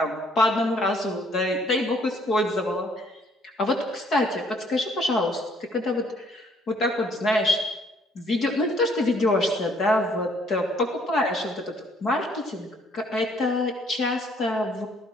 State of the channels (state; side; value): normal; both; correlation 0.64